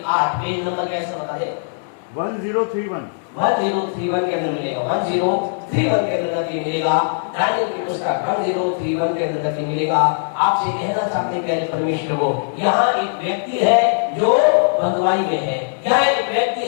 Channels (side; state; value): right; silent; digital silence